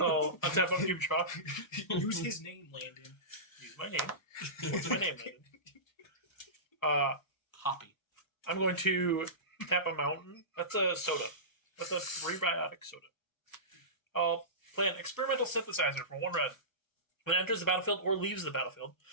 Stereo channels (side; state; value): right; late; 1.1 ms